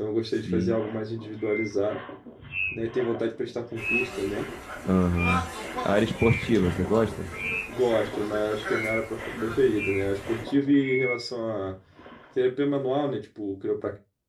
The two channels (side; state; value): both; identical; correlation 1.00